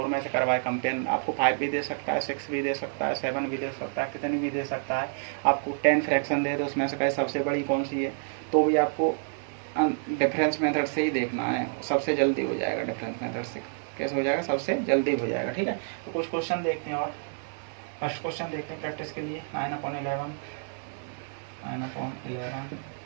में से करवाए कंपेयर। आपको 5 भी दे सकता है, 6 भी दे सकता है, 7 भी दे सकता है, कितनी भी दे सकता है। आपको 10 फ्रैक्शन दे तो उसमें से कहे सबसे बड़ी कौन सी है, तो भी आपको डिफरेंस मेथड से ही देखना है। सबसे जल्दी हो जाएगा डिफरेंस मेथड से। कैसे हो जाएगा? सबसे जल्दी हो जाएगा, ठीक है। तो कुछ क्वेश्चन देखते हैं। और फर्स्ट क्वेश्चन देखते हैं प्रैक्टिस के लिए। 9/11, 9/11,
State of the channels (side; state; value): left; silent; 58 dB below the other